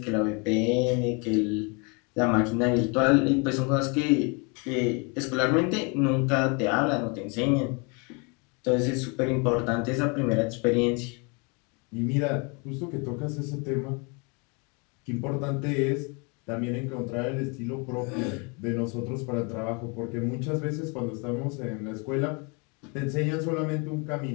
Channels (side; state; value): right; quieter; 32.6 dB